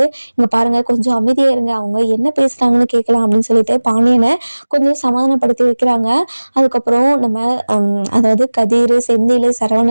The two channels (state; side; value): inverted; both; correlation -1.00